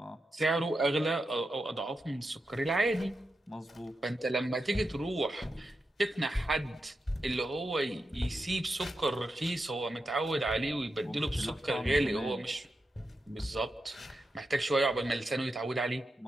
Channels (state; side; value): normal; both; correlation 0.88